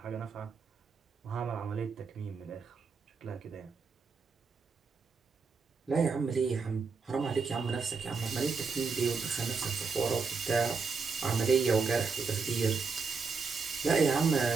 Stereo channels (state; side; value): quieter; left; 4.9 dB